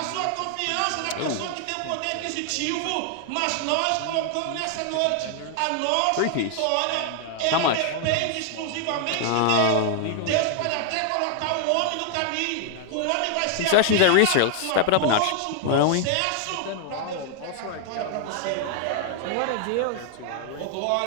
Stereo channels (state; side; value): different; both; correlation 0.00